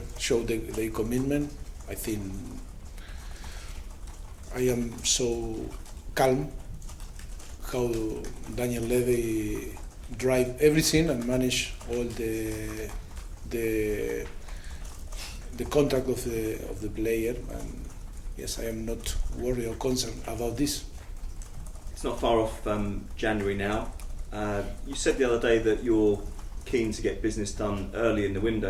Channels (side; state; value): both; identical; correlation 1.00